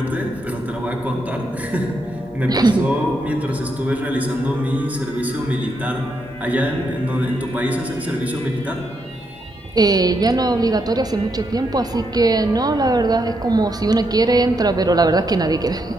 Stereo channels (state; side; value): normal; both; correlation 0.79